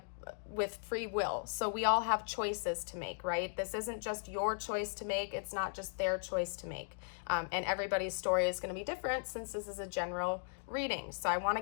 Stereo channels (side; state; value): right; silent; digital silence